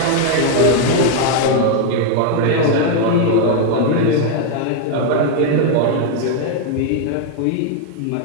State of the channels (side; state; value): both; different; correlation 0.00